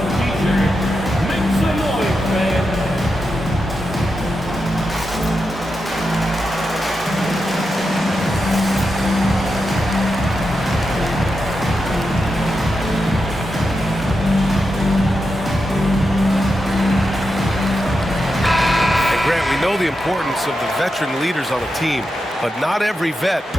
teacher. Make some noise, man. We know the importance of the veteran leaders on a team, but not every vet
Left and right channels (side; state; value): both; normal; correlation 0.88